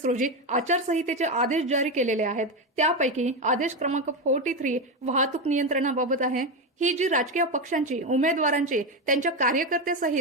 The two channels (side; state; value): both; normal; correlation 0.13